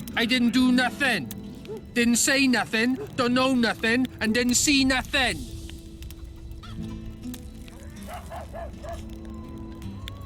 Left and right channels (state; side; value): identical; both; correlation 1.00